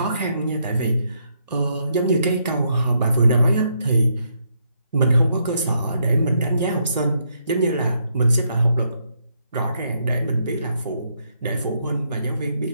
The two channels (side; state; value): both; inverted; correlation -0.76